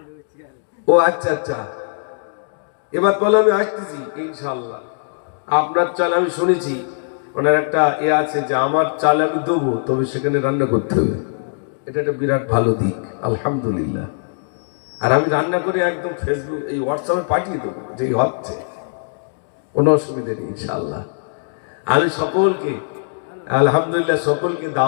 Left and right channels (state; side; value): silent; right; digital silence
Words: ও আচ্ছা আচ্ছা, এবার বলে আমি আসতেছি ইনশাআল্লাহ। আপনার চাল আমি শুনেছি ওনার একটা আছে যে আমার চাল আমি দেবো, তবে সেখানে রান্না করতে হবে, এটা একটা বিরাট ভালো দিক আলহামদুলিল্লাহ। আর আমি রান্না করে একদম ফেসবুক এই হোয়াটসঅ্যাপে পাঠিয়ে দেবো, যে হচ্ছে কোনো অসুবিধা নেই ইনশাআল্লাহ। আমি সকলকে আলহামদুলিল্লাহ সকলকে